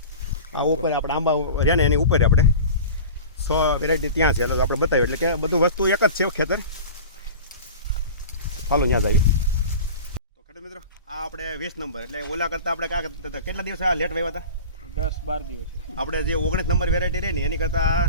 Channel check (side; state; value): both; inverted; correlation -0.35